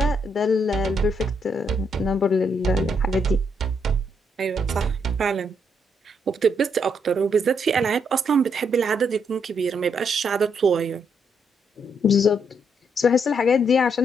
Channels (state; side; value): normal; both; correlation 0.75